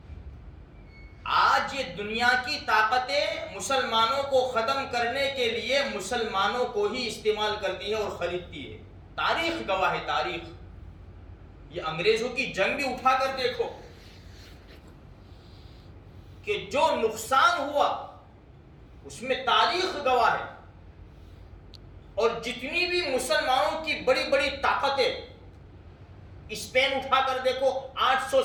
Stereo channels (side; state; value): both; identical; correlation 1.00